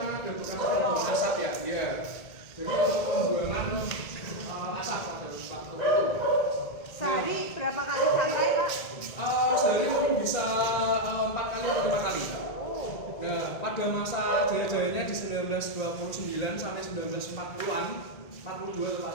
ada bekas asap ya. Iya. Jadi untuk pembuangan asap pada waktu itu. Sehari berapa kali samurai, Pak? Sehari mungkin bisa 4 kali atau 5 kali. Nah, pada masa jaya-jayanya di 1929 sampai 1940-an, 42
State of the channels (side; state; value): right; late; 1.9 ms